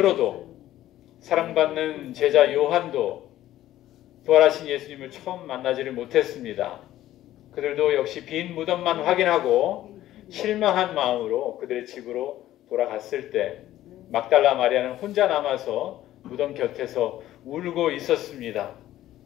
사랑받는 제자 요한도 부활하신 예수님을 처음 만나지를 못했습니다. 그들도 역시 빈 무덤만 확인하고 실망한 마음으로 그들의 집으로 돌아갔을 때 막달라 마리아는 혼자 남아서 무덤 곁에서 울고 있었습니다.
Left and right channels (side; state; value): right; quieter; 13.9 dB